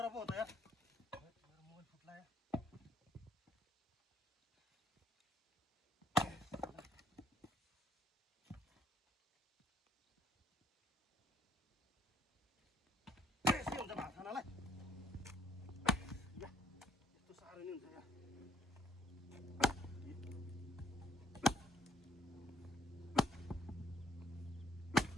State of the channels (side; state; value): both; normal; correlation 0.65